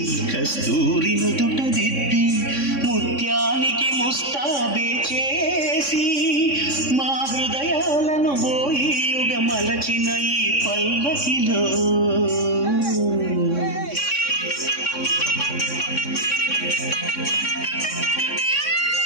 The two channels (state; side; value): late; right; 3.6 ms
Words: కస్తూరి నుదుట దిద్ది ముత్యానికి ముస్తాబే చేసి మా హృదయాలను బోయిలుగా మలచిన ఈ పల్లకిలో